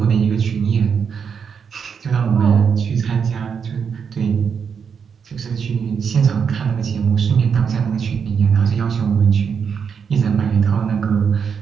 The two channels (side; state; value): left; quieter; 6.6 dB